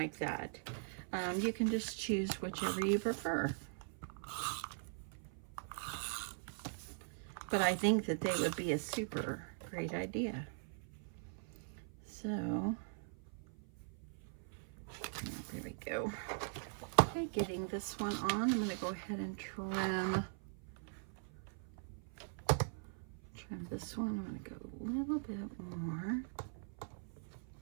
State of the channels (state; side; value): silent; left; 50 dB below the other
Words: that. You can just choose whichever you prefer. But I think that they would be a super great idea. So, there we go. Okay, getting this one on, I'm going to go ahead and trim this one. I'm going to go a little bit more.